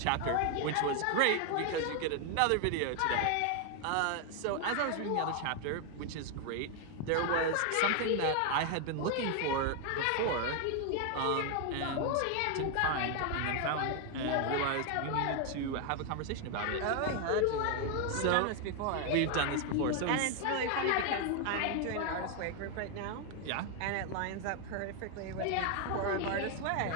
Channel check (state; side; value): different; both; correlation 0.01